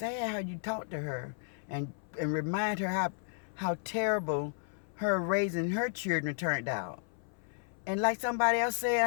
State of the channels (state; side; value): silent; right; 56 dB below the other